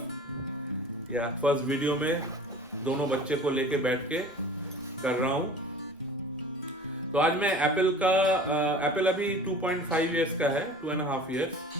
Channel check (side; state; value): both; normal; correlation 0.42